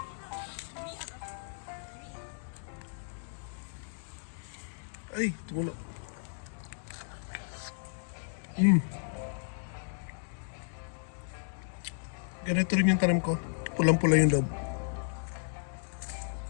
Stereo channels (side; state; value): right; silent; digital silence